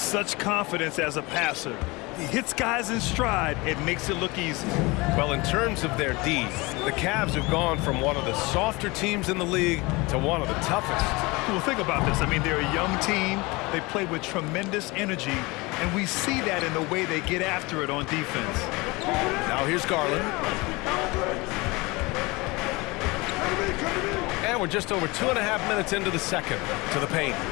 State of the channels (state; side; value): quieter; right; 24.1 dB